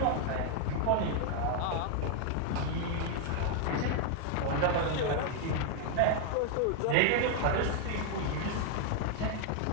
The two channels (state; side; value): different; both; correlation 0.00